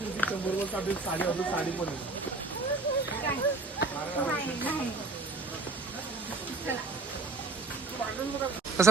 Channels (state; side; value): quieter; left; 3.4 dB